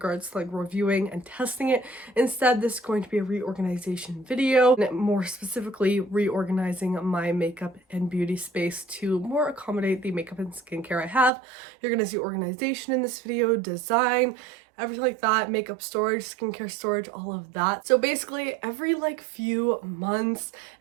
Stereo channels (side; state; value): left; drops out; at 11.3 s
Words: to like reviewing and testing it. Instead, this is going to be a reorganization video, and more specifically reorganizing my makeup and beauty space to more accommodate the makeup and skincare I have. You're gonna see organization in this video, design, everything like that, makeup storage, skincare storage, all of that. So basically every like few months,